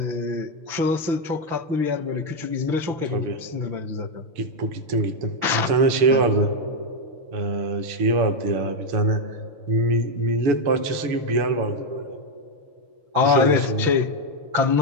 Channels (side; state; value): left; late; 6.0 ms